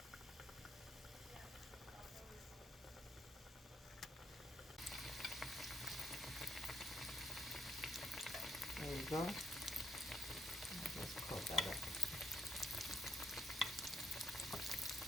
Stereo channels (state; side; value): normal; both; correlation 0.78